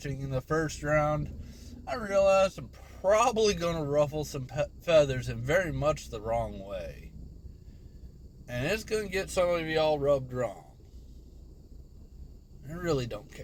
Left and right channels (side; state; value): both; identical; correlation 1.00